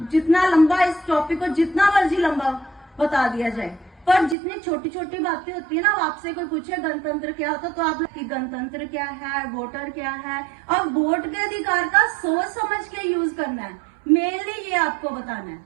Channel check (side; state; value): left; drops out; at 4.4 s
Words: जितना लंबा इस टॉपिक को जितना मर्जी लंबा बता दिया जाए, पर जितनी छोटी छोटी बातें होती है ना, आपसे कोई पूछे गणतंत्र क्या होता, तो आप कि गणतंत्र क्या है, वोटर क्या है, और वोट के अधिकार का सोच समझ के यूज करना है। मेनली ये आपको बताना है,